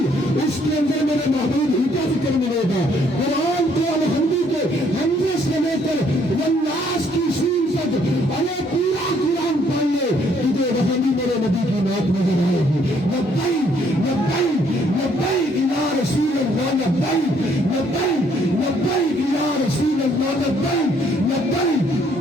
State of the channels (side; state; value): both; normal; correlation 0.66